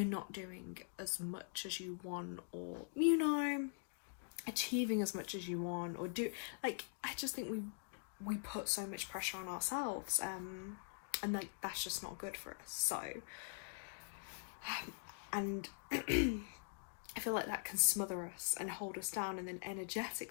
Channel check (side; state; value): right; silent; digital silence